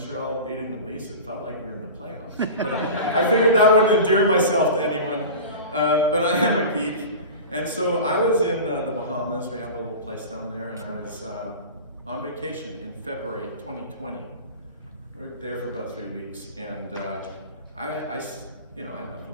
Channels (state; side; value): inverted; both; correlation -0.33